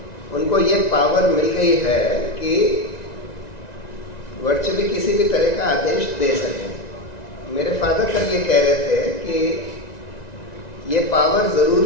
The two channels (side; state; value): right; late; 1.9 ms